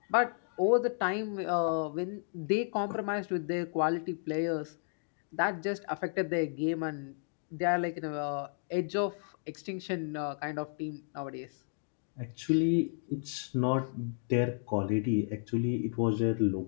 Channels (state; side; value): silent; right; digital silence